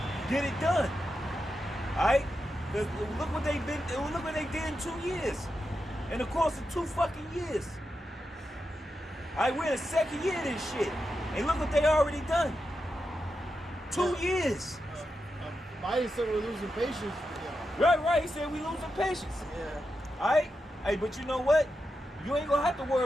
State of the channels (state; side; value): normal; both; correlation 0.88